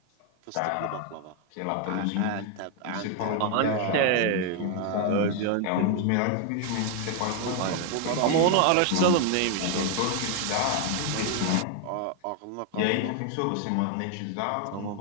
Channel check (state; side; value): different; both; correlation 0.01